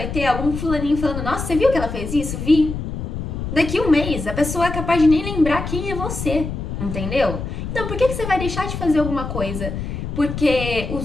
ter é algum fulaninho falando: "Nossa, você viu que ela fez isso?". Vi. Daqui um mês, a pessoa é capaz de nem lembrar quem é você, entendeu? Então por que você vai deixar de fazer alguma coisa? Porque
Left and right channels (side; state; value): left; noise; rumble, 5 dB below the sound